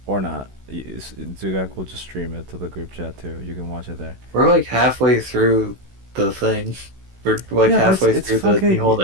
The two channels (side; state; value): left; late; 16 ms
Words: Or not. Zugak will just stream it to the group chat, too. You can watch it there. We're like halfway through the thing. We're like Yeah, halfway it's through fucking- the Mihon